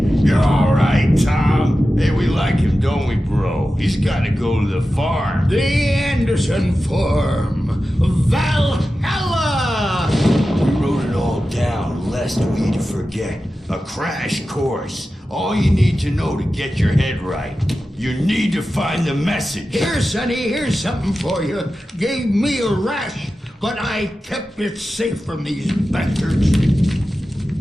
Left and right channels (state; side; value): normal; both; correlation 0.93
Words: You're alright, Tom. Hey, we like him, don't we, bro? He's gotta go to the farm. The Anderson Farm. Valhalla! We wrote it all down, lest we forget. A crash course. All you need to know to get your head right. You need to find the message. Here, Sonny, here's something for you. Gave me a rash, but I kept it safe from these bastards.